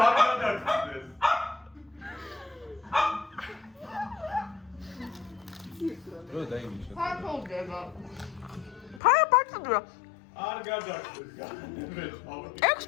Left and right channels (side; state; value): right; drops out; at 9.0 s